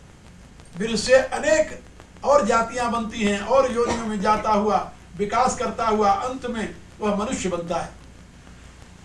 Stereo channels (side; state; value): both; identical; correlation 1.00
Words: वीर्य से अनेक और जातियां बनती हैं और योनियों में जाता हुआ विकास करता हुआ अंत में वह मनुष्य बनता है।